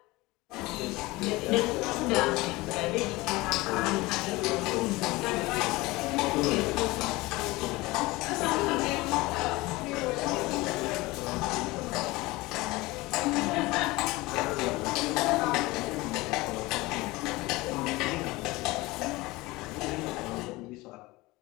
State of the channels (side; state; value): right; quieter; 21.3 dB